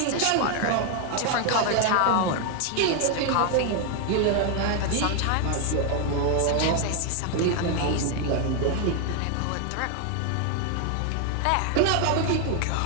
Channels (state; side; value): different; both; correlation 0.00